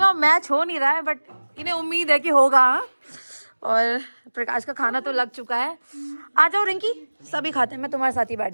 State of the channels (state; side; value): inverted; both; correlation -1.00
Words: मैच हो नहीं रहा है बट इन्हें उम्मीद है कि होगा। और प्रकाश का खाना तो लग चुका है। आ जाओ रिंकी, सभी खाते हैं, मैं तुम्हारे साथ ही बैठ